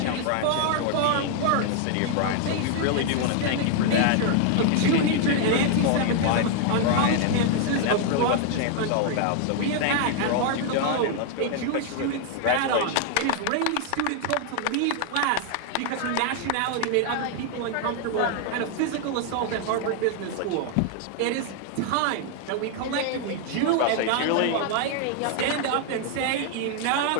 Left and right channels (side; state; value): both; different; correlation 0.00